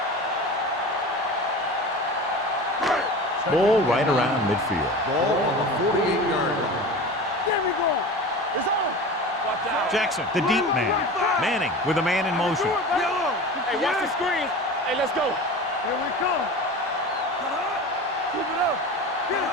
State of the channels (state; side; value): normal; both; correlation 0.33